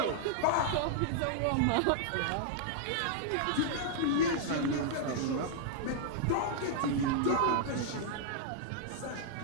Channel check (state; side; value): different; both; correlation -0.01